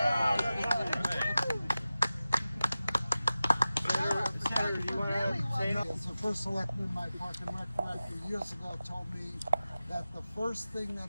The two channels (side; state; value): both; inverted; correlation -0.95